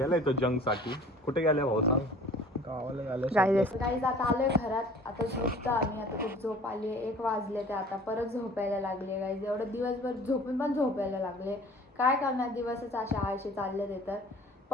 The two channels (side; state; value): both; normal; correlation 0.48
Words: तो जंग साठी. कुठे गेलाय भाऊ सांग? गावाला झालं गाईज आता आलोय घरात आता झोपतो आम्ही आता खूप झोप आली 1 वाजले ते आता परत झोपायला लागले गाईज एवढं दिवसभर झोपून पण झोपायला लागले काय करणार दिवसच अशा आळशी चालले ते तर